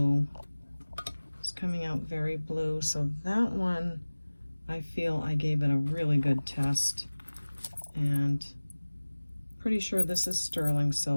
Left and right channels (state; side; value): inverted; both; correlation -1.00